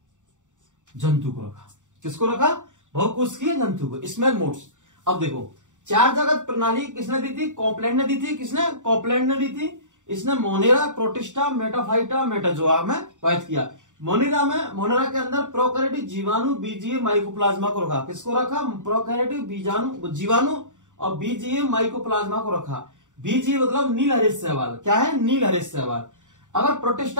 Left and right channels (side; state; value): left; late; 0.86 ms